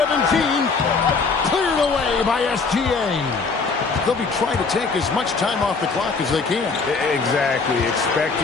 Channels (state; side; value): quieter; right; 4.6 dB